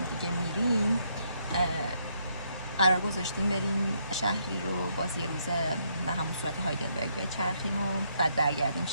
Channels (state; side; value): inverted; both; correlation -0.74